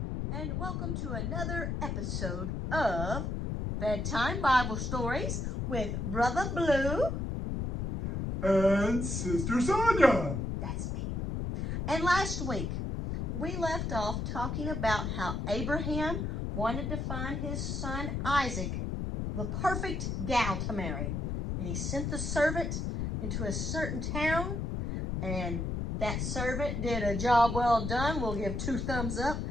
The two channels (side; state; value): left; noise; rumble, 2 dB below the sound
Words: and welcome to another episode of Bedtime Bible Stories with Brother Blue and Sister.Sonya. That's me. And last week, we left off talking about how Abraham wanted to find his son Isaac, the perfect gal to marry. And he sent the servant into a certain town, and that servant did a job well done. We'll give 2 thumbs up